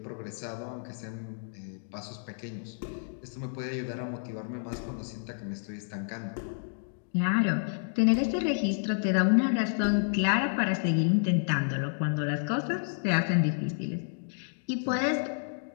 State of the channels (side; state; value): right; silent; digital silence